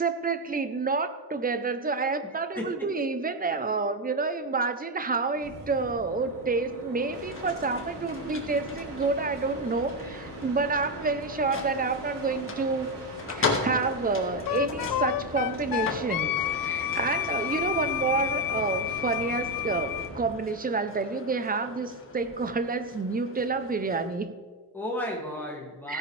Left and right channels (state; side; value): normal; both; correlation 0.09